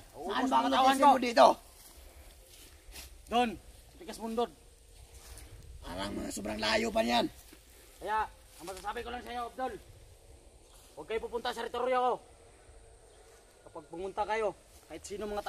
ba ang Tauhan location mo dito? Doon, sa Tigas Mundod. Parang mga sobrang layo pa niyan. Kaya, ang masasabi ko lang sa iyo, Abdol, huwag kayo pupunta sa teritoryo ko. Kapag pumunta kayo, kahit sino mga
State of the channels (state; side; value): identical; both; correlation 1.00